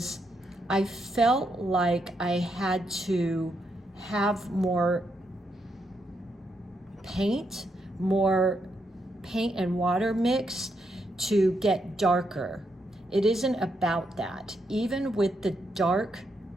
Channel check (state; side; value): normal; both; correlation 0.80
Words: I felt like I had to have more paint and water mixed to get darker. It isn't about that. Even with the dark